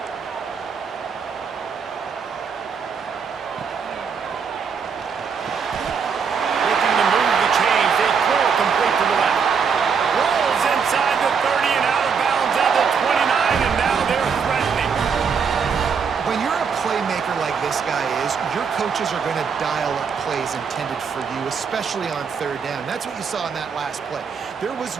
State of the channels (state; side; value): quieter; left; 6.2 dB